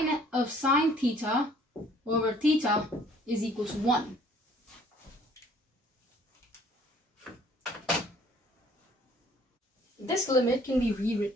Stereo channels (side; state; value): both; normal; correlation 0.57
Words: theta over theta is equal to 1. This limit can be